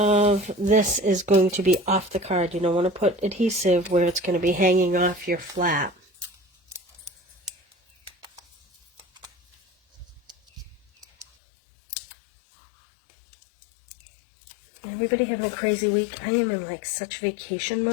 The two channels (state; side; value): drops out; right; at 11.2 s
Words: this is going to be off the card. You don't want to put adhesive where it's going to be hanging off your flap. Everybody having a crazy week. I am in like such vacation